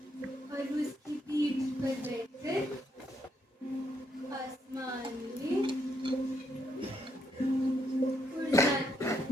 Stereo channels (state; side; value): normal; both; correlation 0.76